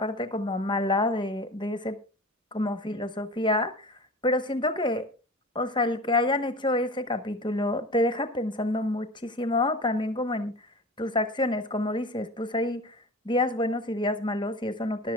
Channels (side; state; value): both; normal; correlation 0.35